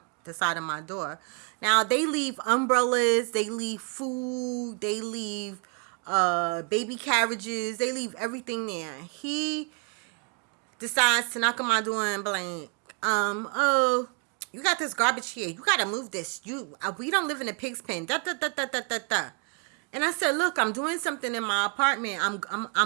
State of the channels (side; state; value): left; quieter; 36.8 dB